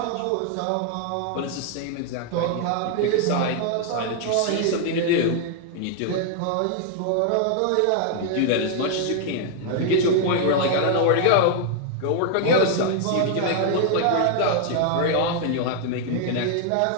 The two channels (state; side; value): different; both; correlation 0.00